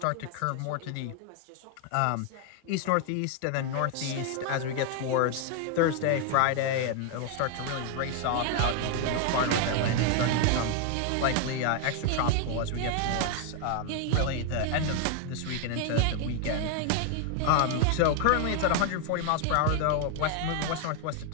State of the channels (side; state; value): both; different; correlation 0.00